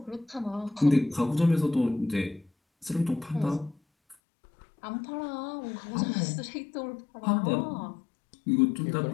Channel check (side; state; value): right; drops out; at 4.2 s